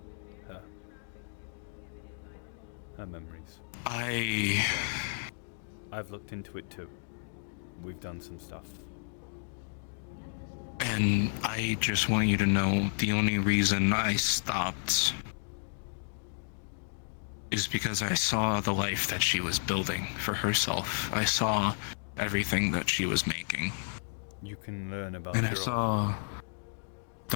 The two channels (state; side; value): silent; right; digital silence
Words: her. Her memories. I've looked into it too. We've done some stuff. And I just want you to know the only reason I stopped is because I saw the life that she was building for herself. I saw everything that she was making. You can learn about And I saw